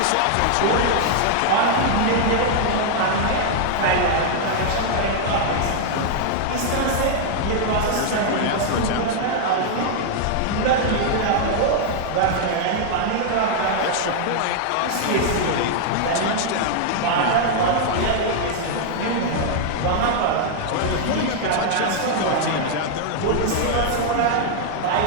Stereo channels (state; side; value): different; both; correlation 0.00